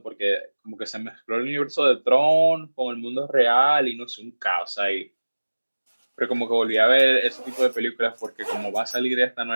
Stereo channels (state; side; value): inverted; both; correlation -1.00